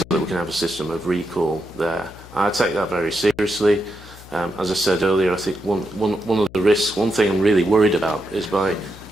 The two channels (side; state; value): left; noise; hum, 19 dB below the sound